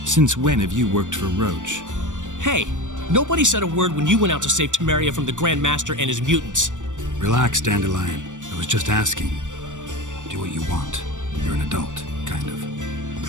Since when have you worked for Roach? Hey, nobody said a word when you went out to save Temeria from the Grand Master and his mutants. Relax, Dandelion. I was just asking. Do what you want. You're an adult, kind of.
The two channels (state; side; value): late; left; 0.86 ms